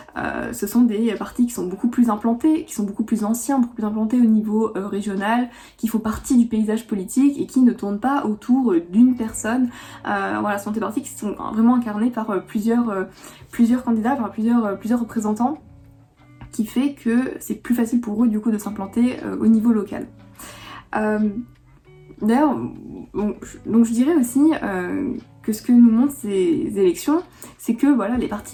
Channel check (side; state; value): both; identical; correlation 1.00